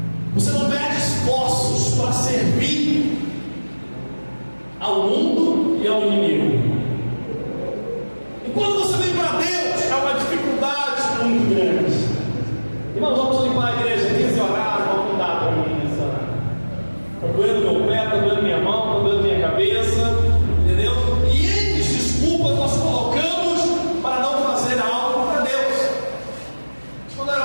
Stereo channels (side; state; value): both; inverted; correlation -1.00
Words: você não mede esforços para servir ao mundo e ao inimigo. E quando você vem para Deus, é uma dificuldade muito grande. Irmãos, vamos limpar a igreja 15 horas, vamos mudar para mim nessa hora. Está doendo meu pé, está doendo minha mão, está doendo minha cabeça, entendeu? E N desculpas nós colocamos para não fazer algo para Deus. Quando era